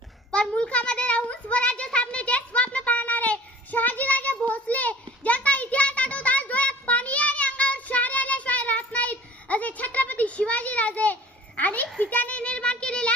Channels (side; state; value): both; normal; correlation 0.46